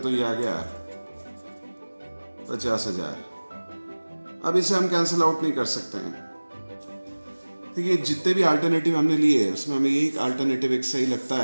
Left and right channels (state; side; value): inverted; both; correlation -1.00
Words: तो ये आ गया 50,000। अब इसे हम कैंसिल आउट नहीं कर सकते हैं। देखिए जितने भी अल्टरनेटिव हमने लिए उसमें हमें यही अल्टरनेटिव एक सही लगता